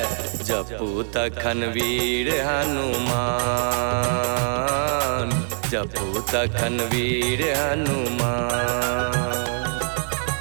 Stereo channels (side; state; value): left; silent; digital silence